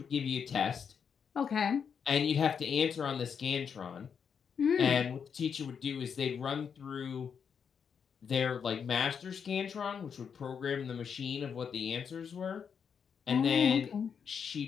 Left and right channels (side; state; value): right; quieter; 6.9 dB